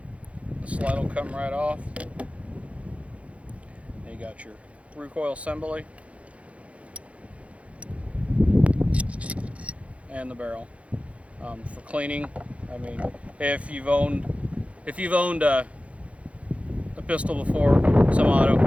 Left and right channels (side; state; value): left; late; 0.063 ms